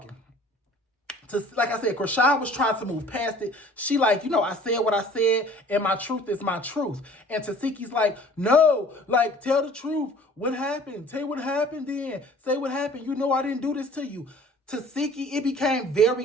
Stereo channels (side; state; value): both; normal; correlation 0.49